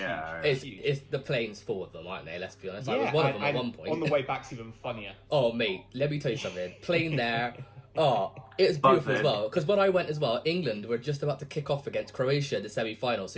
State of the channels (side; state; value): both; identical; correlation 1.00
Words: the planes full of them, aren't they? Let's be honest. I was one of them at one point. On the way back's even funnier. Oh mate, let me tell you something. Plane there. Oh, it was beautiful as well. Because when I went as well, England were just about to kick off against Croatia in the semi-final. So